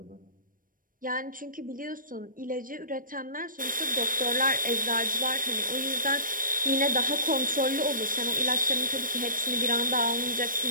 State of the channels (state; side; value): late; left; 0.40 ms